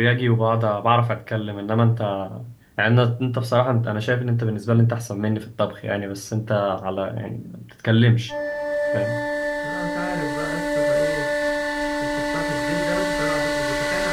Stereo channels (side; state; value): both; identical; correlation 1.00